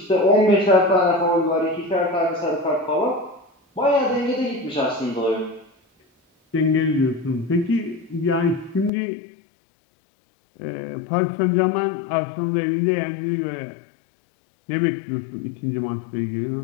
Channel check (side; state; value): right; drops out; at 8.9 s